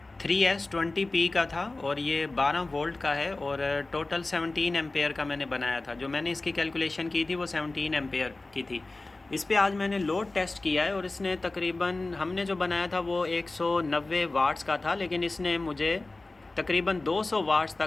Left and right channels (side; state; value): right; quieter; 3.1 dB